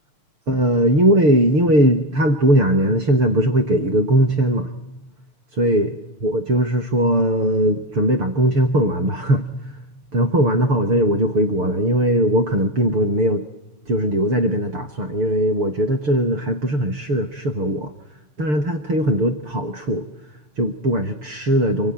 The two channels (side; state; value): left; late; 6.7 ms